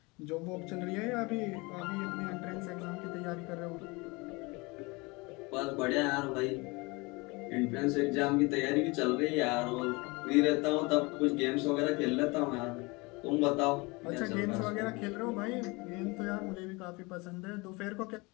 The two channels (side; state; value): right; quieter; 25.8 dB